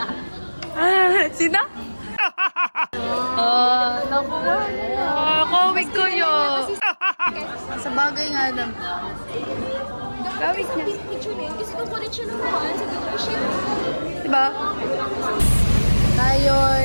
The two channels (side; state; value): both; inverted; correlation -1.00